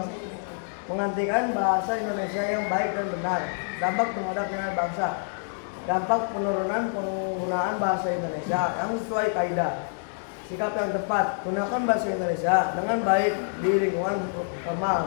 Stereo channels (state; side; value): silent; right; digital silence